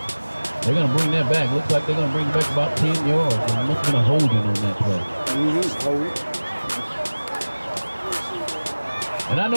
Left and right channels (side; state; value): both; inverted; correlation -1.00